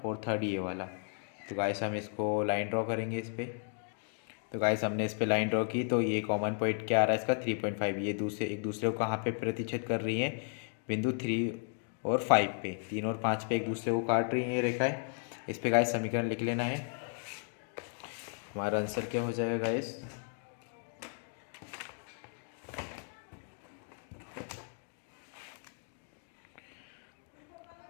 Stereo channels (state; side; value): silent; right; 55 dB below the other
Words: और थर्ड ये वाला। तो गाइस हम इसको लाइन ड्रॉ करेंगे इस पर। तो गाइस हमने इस पे लाइन ड्रॉ की, तो ये कॉमन पॉइंट क्या आ रहा है इसका 3.5, ये एक दूसरे को कहाँ पे प्रतिच्छेद कर रही हैं, बिंदु 3 और 5 पे, 3 और 5 पे एक दूसरे को काट रही हैं ये रेखाएं। इस पे गाइस समीकरण लिख लेना है, हमारा आंसर क्या हो जाएगा गाइस,